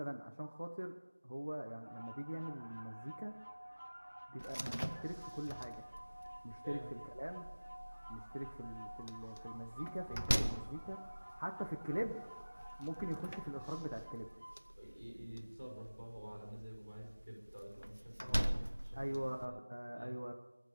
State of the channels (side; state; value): both; inverted; correlation -1.00